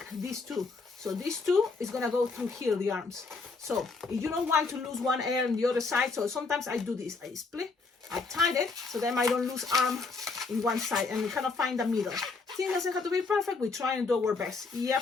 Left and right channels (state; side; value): quieter; right; 4.2 dB